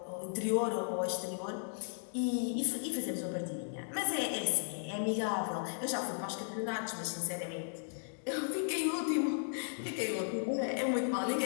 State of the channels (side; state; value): right; silent; digital silence